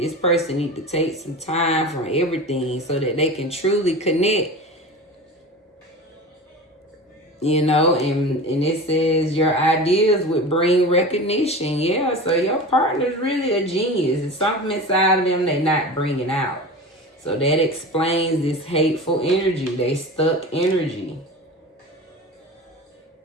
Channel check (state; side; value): normal; both; correlation 0.31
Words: person need to take some time from everything so that they can truly connect. And it says your ideas would bring recognition. Yeah, so your partner's really a genius. It's something inside of them they're not bringing out. So that explains this hateful energy. They stuck energy.